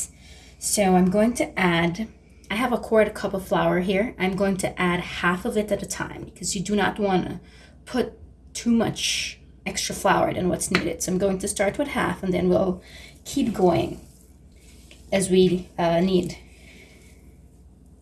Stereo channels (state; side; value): identical; both; correlation 1.00